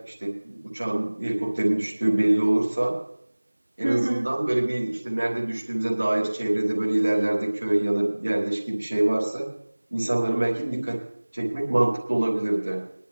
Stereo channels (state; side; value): inverted; both; correlation -1.00